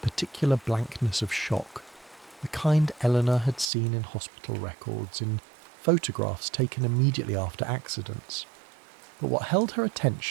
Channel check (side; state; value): left; drops out; at 3.7 s